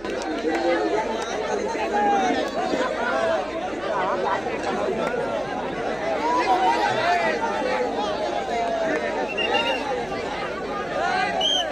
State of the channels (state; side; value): noise; right; hum, 21 dB below the sound